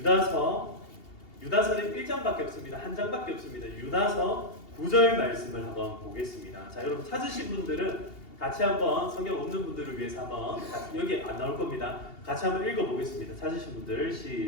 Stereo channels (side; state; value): right; late; 2.8 ms